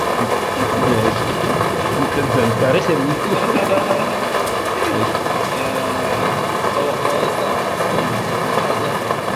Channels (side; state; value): both; identical; correlation 1.00